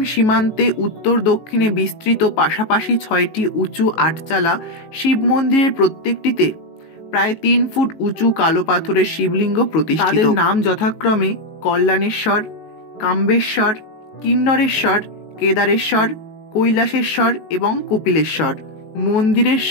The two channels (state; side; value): late; right; 19 ms